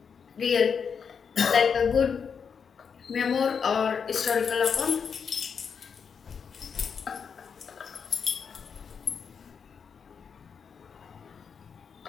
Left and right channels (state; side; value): quieter; right; 6.4 dB